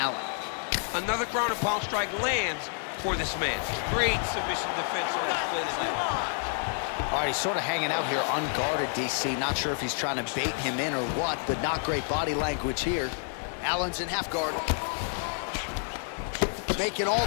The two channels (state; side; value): silent; right; 59 dB below the other